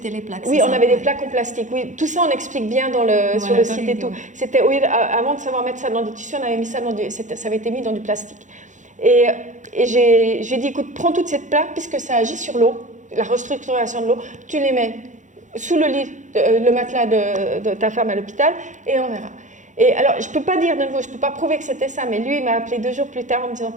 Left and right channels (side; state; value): left; late; 0.36 ms